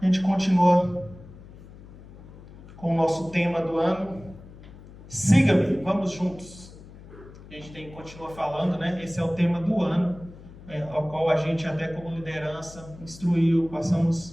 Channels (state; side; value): noise; left; hum, 19 dB below the sound